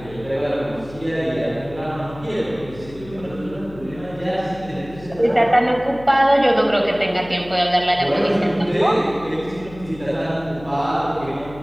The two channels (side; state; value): left; noise; hum, 17 dB below the sound